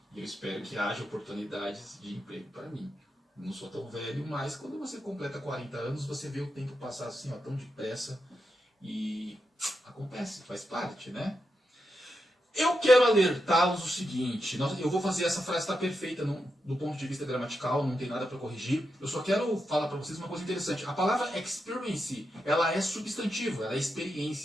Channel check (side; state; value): both; normal; correlation 0.86